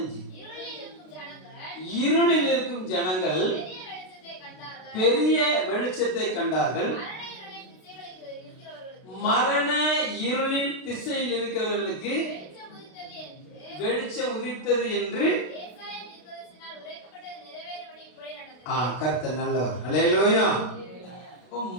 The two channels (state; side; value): late; right; 32 ms